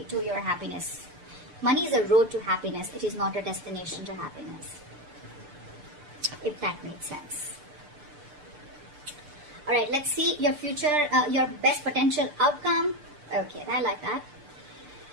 to your happiness. Money is a road to happiness. It is not a destination to happiness. If that makes sense. Alright, let's see your future, your best potential outcome. Okay, I like that.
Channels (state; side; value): late; left; 6.8 ms